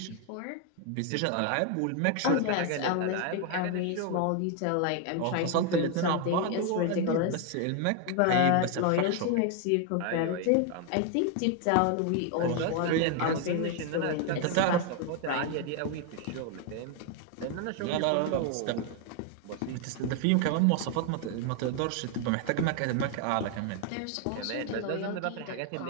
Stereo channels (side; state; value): both; different; correlation 0.01